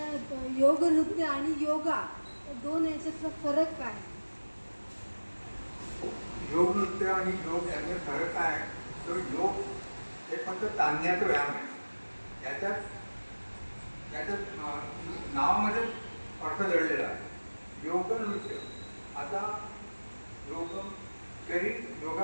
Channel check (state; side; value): inverted; both; correlation -1.00